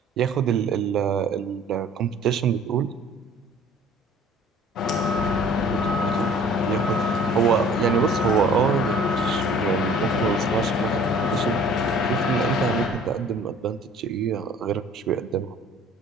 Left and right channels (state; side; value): normal; both; correlation 0.51